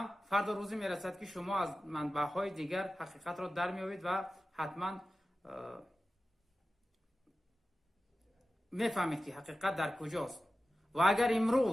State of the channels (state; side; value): normal; both; correlation 0.94